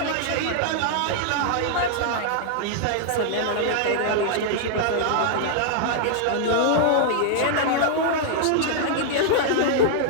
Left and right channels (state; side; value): different; both; correlation -0.01